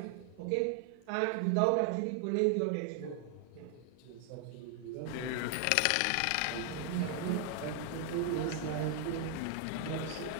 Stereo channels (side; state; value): both; different; correlation 0.00